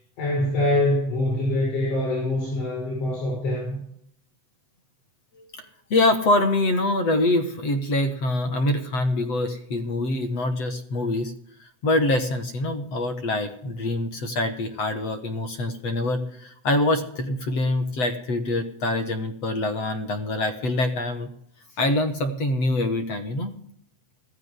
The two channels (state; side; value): late; right; 8.0 ms